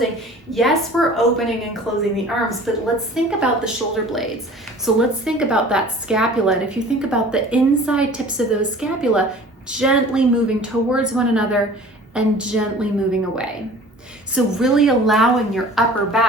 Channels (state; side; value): normal; both; correlation 0.45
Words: yes, we're opening and closing the arms, but let's think about the shoulder blades. So let's think about that scapula. And if you think about the inside tips of those scapula, gently moving towards one another and gently moving away. So really allowing your upper